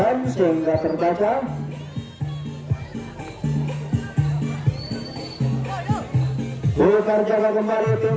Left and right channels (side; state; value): both; identical; correlation 1.00